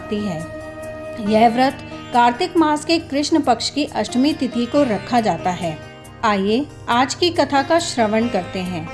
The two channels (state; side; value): identical; both; correlation 1.00